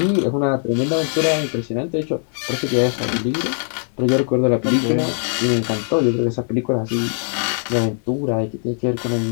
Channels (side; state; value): right; silent; digital silence